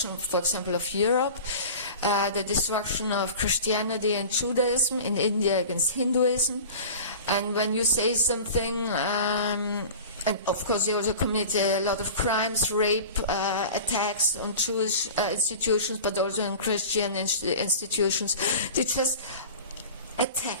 for example, of Europe, the destruction of Christianity and Judaism in India against Hinduism. And when you say something, and of course they also commit a lot of crimes, rape, attacks on Jewish institutions, but also on Christian institutions. They just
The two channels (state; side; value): inverted; both; correlation -0.37